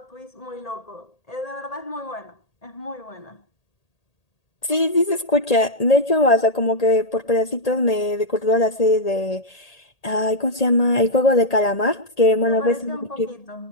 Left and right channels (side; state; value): right; late; 1.8 ms